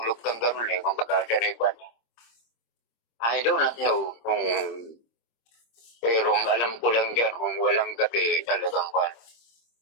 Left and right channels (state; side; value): late; right; 26 ms